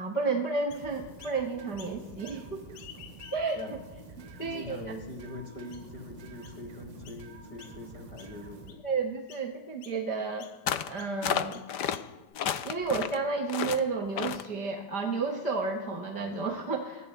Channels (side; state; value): right; late; 5.1 ms